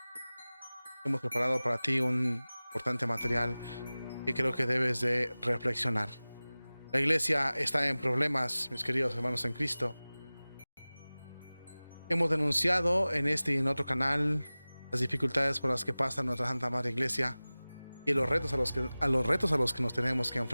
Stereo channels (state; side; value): inverted; both; correlation -0.99